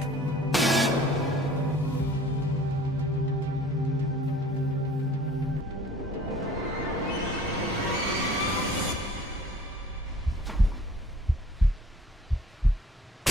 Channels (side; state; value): both; normal; correlation 0.51